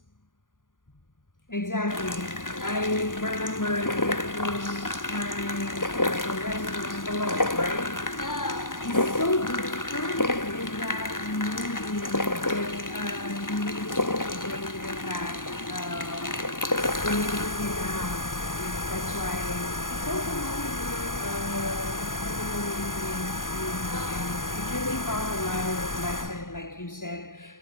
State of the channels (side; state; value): right; late; 0.89 ms